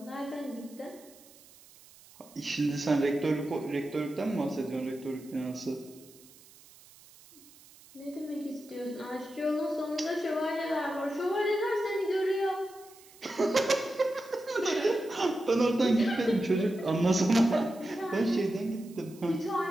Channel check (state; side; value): noise; right; hiss, 24 dB below the sound